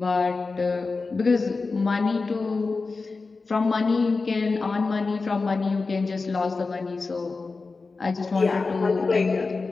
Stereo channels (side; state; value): right; quieter; 4.0 dB